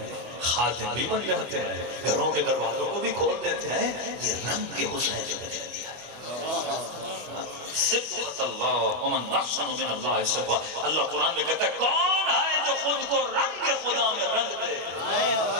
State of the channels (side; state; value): left; late; 25 ms